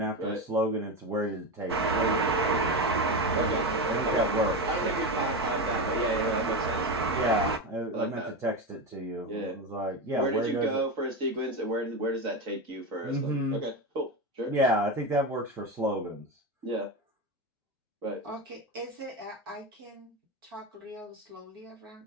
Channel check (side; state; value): both; normal; correlation 0.18